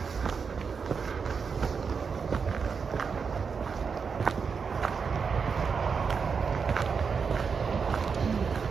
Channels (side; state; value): left; quieter; 5.7 dB